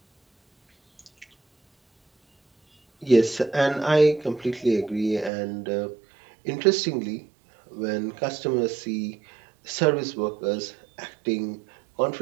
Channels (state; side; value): drops out; left; at 5.3 s